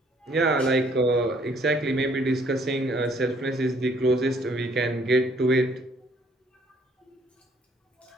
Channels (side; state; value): both; normal; correlation 0.63